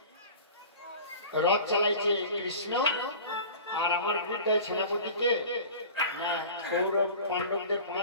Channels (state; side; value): inverted; both; correlation -0.39